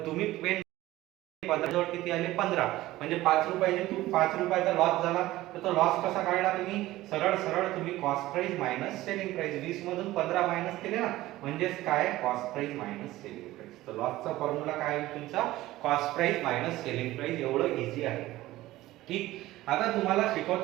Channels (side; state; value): left; quieter; 16.7 dB